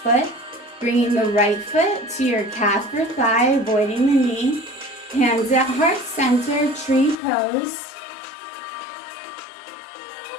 bringing the right foot to your calf or thigh, avoiding the knee. Hands at heart center, tree pose.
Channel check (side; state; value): right; drops out; at 7.2 s